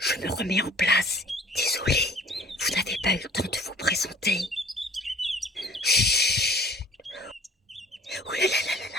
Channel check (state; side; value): normal; both; correlation 0.52